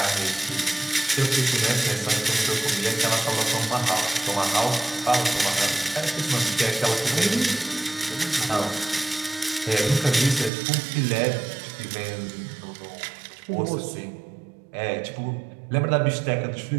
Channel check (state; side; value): drops out; left; at 10.5 s